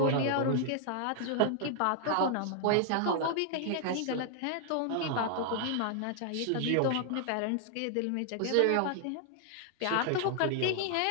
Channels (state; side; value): different; both; correlation 0.00